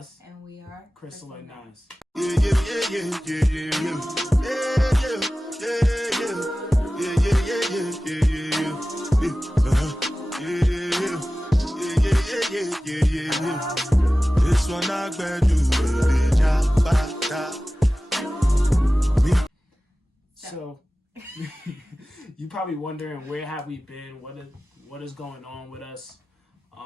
And we are Crystal and Nas. This one I bet you. So you probably wondering, where have we been? What is going on with us?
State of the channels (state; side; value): normal; both; correlation 0.96